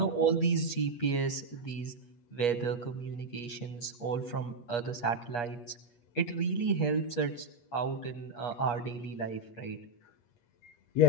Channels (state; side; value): late; right; 8.4 ms